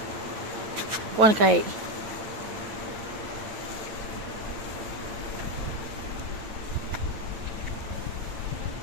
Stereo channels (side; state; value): left; late; 9.2 ms